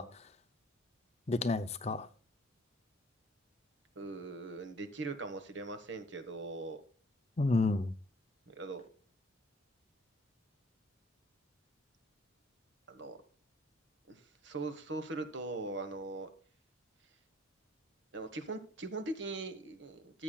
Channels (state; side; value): normal; both; correlation 0.58